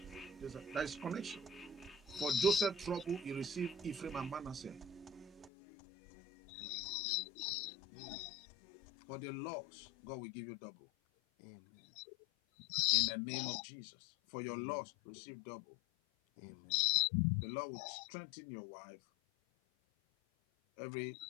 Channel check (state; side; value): drops out; right; at 5.5 s